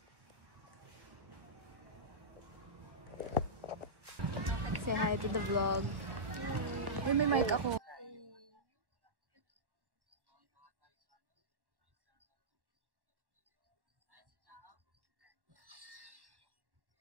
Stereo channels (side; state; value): left; late; 1.1 ms